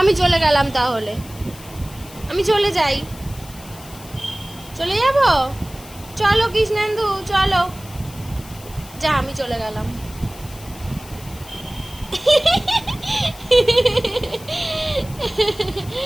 চলে গেলাম তাহলে, আমি চলে যাই। চলে যাব, চলো কৃষ্ণেন্দু চলো। যা, আমি চলে গেলাম।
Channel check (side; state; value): left; noise; hiss, 19 dB below the sound